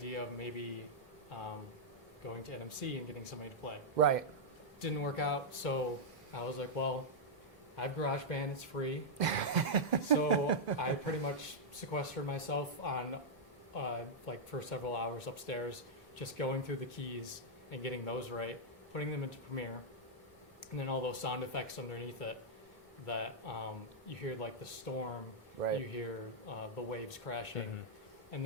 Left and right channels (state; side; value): normal; both; correlation -0.07